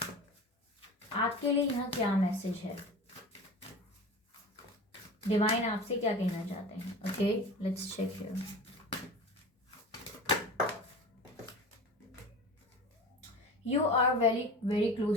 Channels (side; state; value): both; normal; correlation 0.34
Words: आपके लिए यहाँ क्या मैसेज है, डिवाइन आपसे क्या कहना चाहते हैं। Okay, let's check here. You are very very